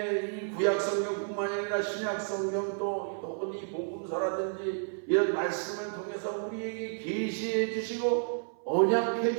이 구약 성경뿐만 아니라 신약 성경 또 혹은 이 복음서라든지 이런 말씀을 통해서 우리에게 계시해 주시고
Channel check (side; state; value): left; silent; 57 dB below the other